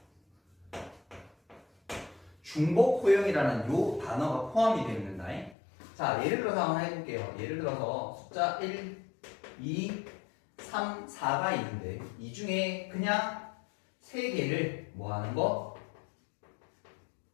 중복호형이라는 요 단어가 포함이 되어 있는다. 자, 예를 들어서 한번 해볼게요. 예를 들어서 숫자 1, 2, 3, 4가 있는데 이 중에 그냥 3개를 뭐 하는 거?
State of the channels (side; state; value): right; drops out; at 5.6 s